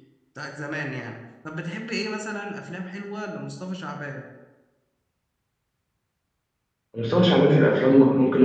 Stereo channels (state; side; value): identical; both; correlation 1.00